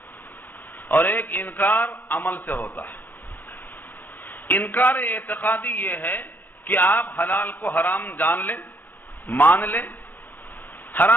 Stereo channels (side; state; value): right; late; 0.087 ms